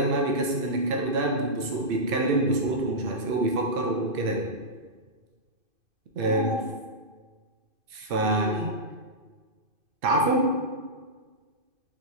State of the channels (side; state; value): left; late; 2.6 ms